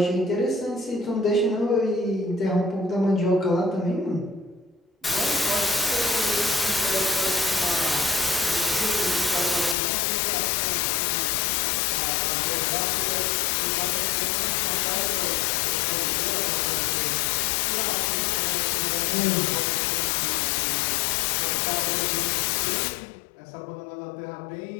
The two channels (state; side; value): drops out; right; at 9.8 s